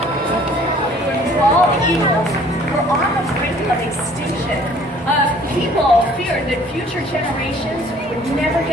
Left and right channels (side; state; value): both; normal; correlation 0.55